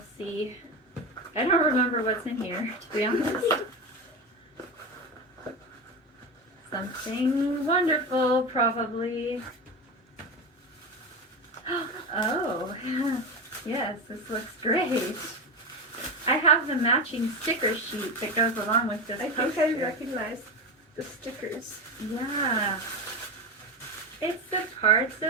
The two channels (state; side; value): normal; both; correlation 0.20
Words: see. I don't remember what's in here, to be honest. Something wonderful, probably. Oh, yes, this looks great. I have the matching sticker sheet that goes along with this poster. I think I recognize the stickers. Yeah. It's the parts